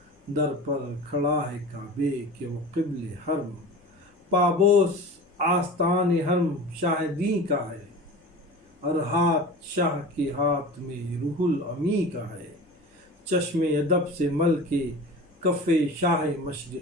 در پر کھڑا ہے کعبے کہ وہ قبل حرم۔ پابوس آستان حرم شاہ دین کا ہے، اور ہاتھ شاہ کے ہاتھ میں روح الامی کا ہے۔ چشم ادب سے مل کے کف شاہ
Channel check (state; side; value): normal; both; correlation 0.35